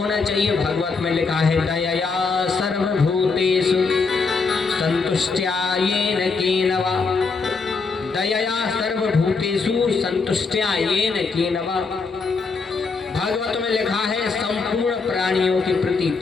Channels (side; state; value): right; quieter; 4.6 dB